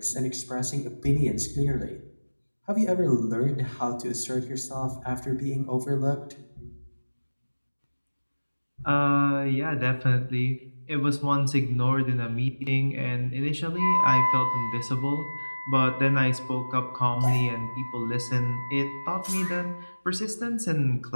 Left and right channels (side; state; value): both; inverted; correlation -1.00